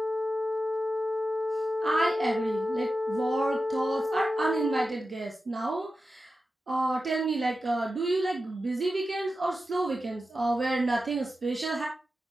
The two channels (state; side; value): normal; both; correlation 0.92